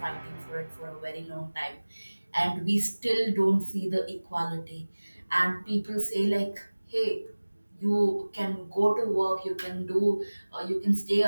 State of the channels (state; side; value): inverted; both; correlation -1.00